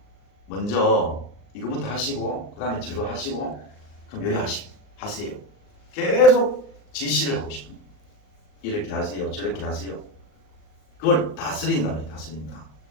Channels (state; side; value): late; right; 39 ms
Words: 먼저 이거부터 하시고, 그 다음에 저거 하시고, 그럼 요리 하세요. 계속 지시를 하고 싶은 거예요. 이렇게 하세요. 저렇게 하세요. 그걸 다스린다.